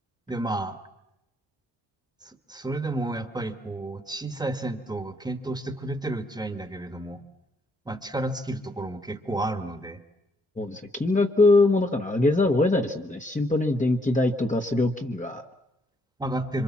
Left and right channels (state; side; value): normal; both; correlation 0.72